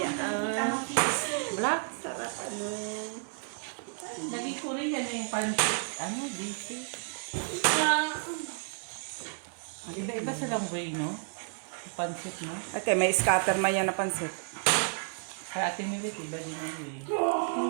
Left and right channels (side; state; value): left; silent; 57 dB below the other